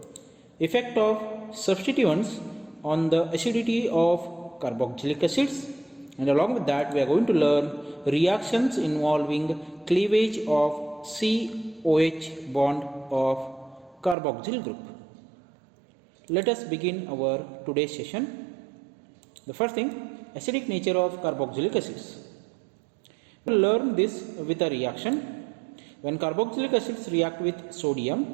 effect of substituents on the acidity of carboxylic acids, and along with that we are going to learn reactions involving cleavage of COH bond of carboxyl group. Let us begin our today's session. The first thing, acidic nature of carboxylic acids. We will learn this with a reaction. When carboxylic acids react with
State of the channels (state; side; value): drops out; left; at 14.2 s